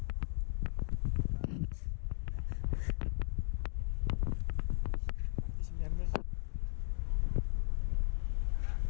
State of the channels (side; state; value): right; silent; digital silence